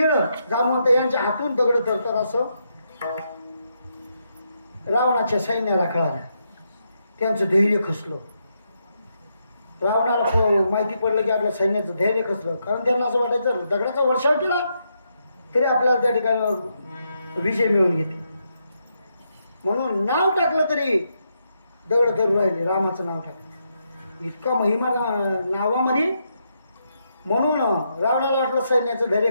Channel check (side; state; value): both; inverted; correlation -0.80